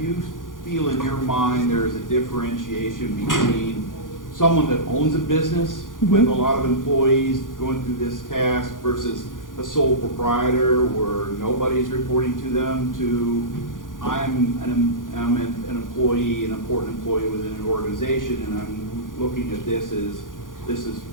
feel in your mind there's a differentiation between someone that owns a business with a lot of employees going through this task versus a sole proprietor where nobody's reporting to them, to I'm an employee, an important employee within an organization, and I'm looking at this as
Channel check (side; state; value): right; late; 0.89 ms